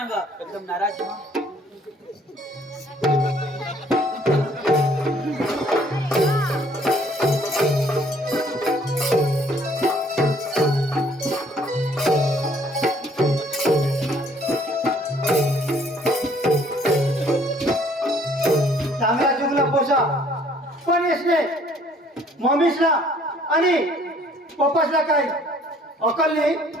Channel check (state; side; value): normal; both; correlation 0.60